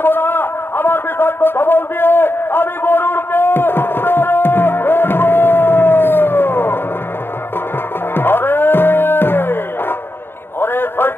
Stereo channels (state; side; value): late; right; 0.11 ms